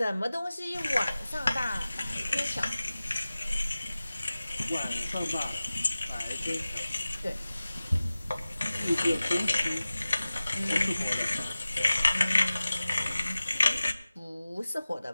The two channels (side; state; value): both; inverted; correlation -0.97